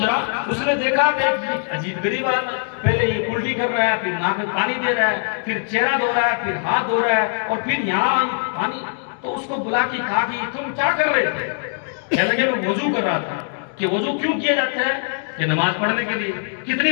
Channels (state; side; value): silent; right; 65 dB below the other